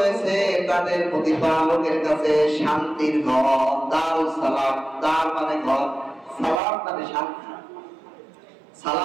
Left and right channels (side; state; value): left; drops out; at 6.6 s